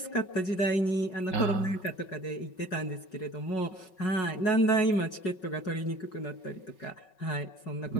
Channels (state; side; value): late; right; 5.4 ms